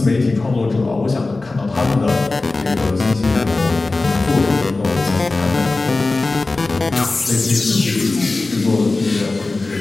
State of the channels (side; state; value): right; quieter; 3.3 dB